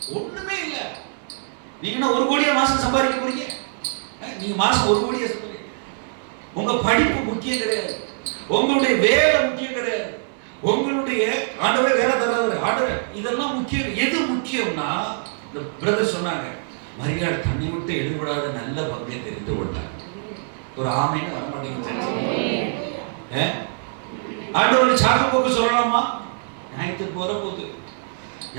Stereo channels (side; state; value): left; silent; digital silence